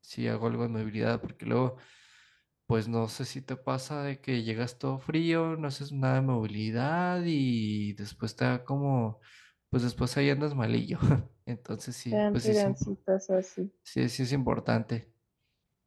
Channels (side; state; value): both; identical; correlation 1.00